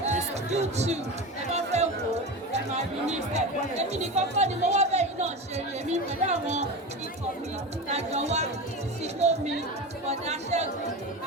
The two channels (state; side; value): normal; both; correlation 0.25